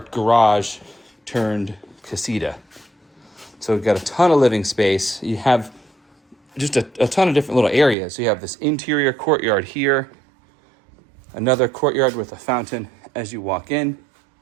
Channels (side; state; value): left; drops out; at 8.0 s